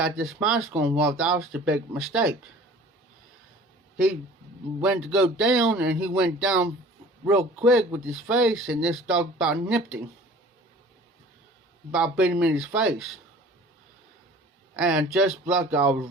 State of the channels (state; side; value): normal; both; correlation 0.47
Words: this mask on. Well, that was the big mistake. He went to go down, and he went down real quick with his face, and this dog about nipped him. About bit him in his face. And just like I was